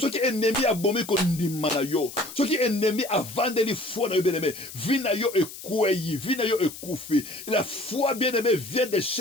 qui est ennemi a bombé qu'on dit manayo, ce qui est ennemi a vendu les foi bien aimé, vie na yo est kouyi, vie na yo est koufi. La foi bien aimé vient de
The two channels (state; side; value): noise; left; hiss, 13 dB below the sound